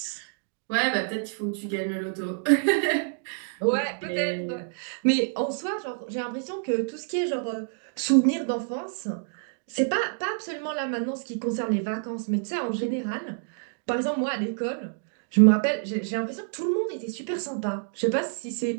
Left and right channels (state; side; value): silent; left; digital silence